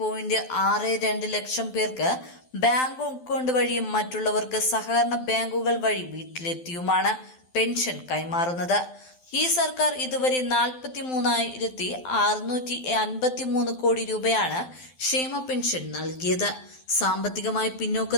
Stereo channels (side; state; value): right; late; 12 ms